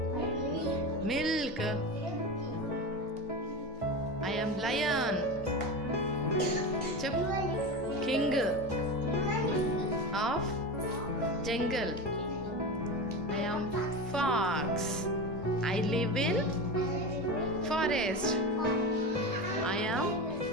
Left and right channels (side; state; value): both; normal; correlation 0.23